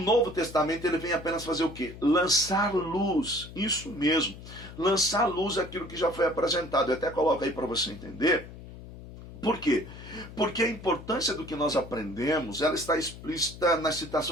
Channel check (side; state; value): left; noise; hum, 15 dB below the sound